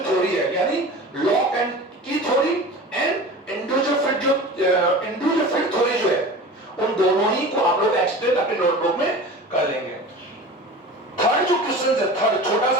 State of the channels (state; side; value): normal; both; correlation 0.36